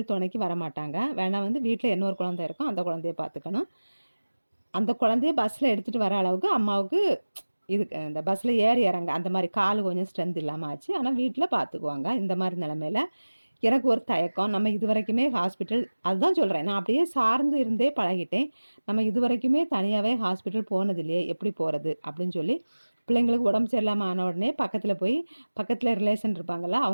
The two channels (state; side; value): inverted; both; correlation -1.00